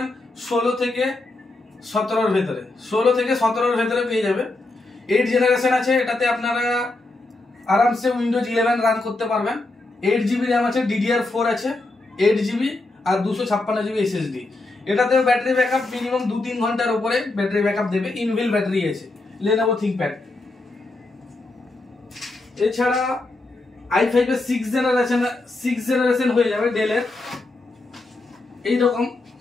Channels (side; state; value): right; quieter; 3.0 dB